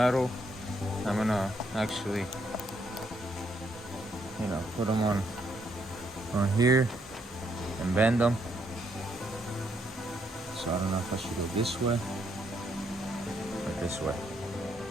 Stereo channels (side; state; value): both; normal; correlation 0.74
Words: I'm gonna actually, you know, put them on here and bend them. So I don't know if I should go this way or this way,